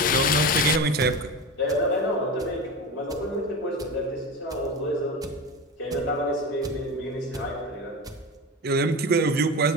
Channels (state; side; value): normal; both; correlation 0.25